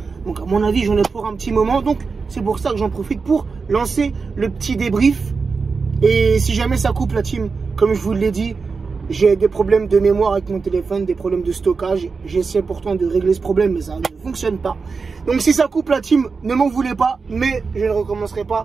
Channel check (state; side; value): quieter; left; 4.8 dB